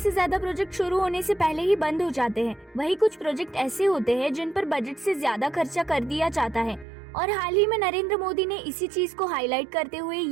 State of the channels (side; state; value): left; drops out; at 6.9 s